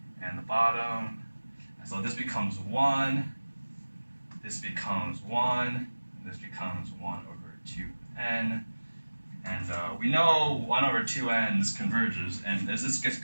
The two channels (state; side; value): inverted; both; correlation -1.00